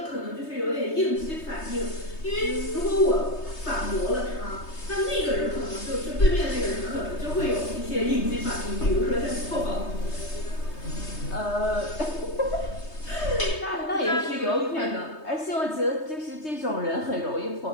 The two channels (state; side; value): late; right; 3.2 ms